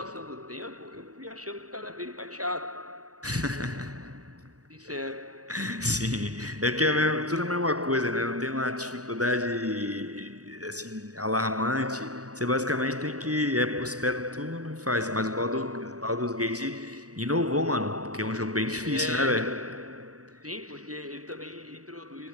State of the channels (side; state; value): left; late; 0.67 ms